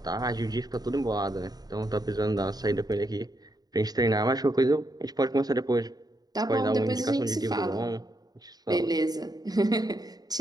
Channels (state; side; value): late; left; 0.19 ms